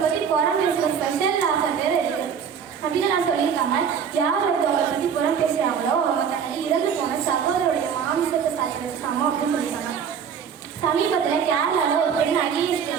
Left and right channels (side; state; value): left; quieter; 7.3 dB